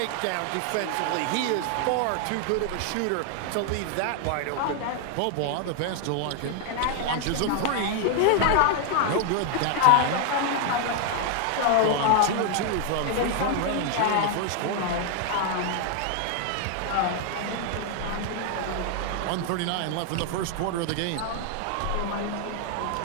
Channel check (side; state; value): both; different; correlation 0.00